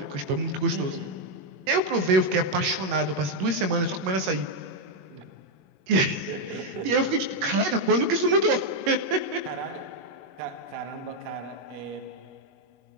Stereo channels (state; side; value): late; left; 21 ms